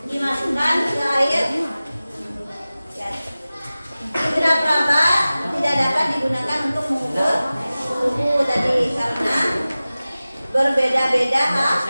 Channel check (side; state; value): both; inverted; correlation -0.97